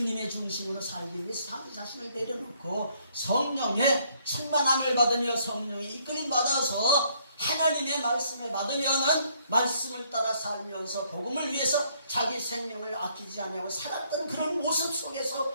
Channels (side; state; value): both; inverted; correlation -0.67